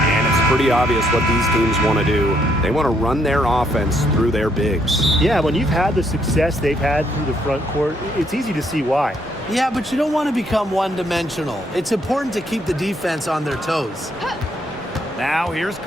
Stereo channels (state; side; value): normal; both; correlation 0.71